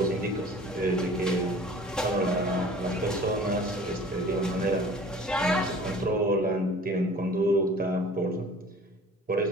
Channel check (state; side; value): normal; both; correlation 0.46